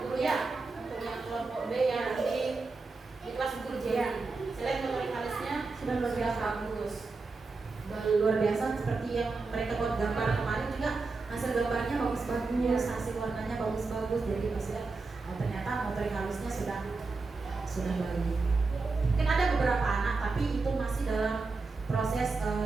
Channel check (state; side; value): quieter; left; 3.9 dB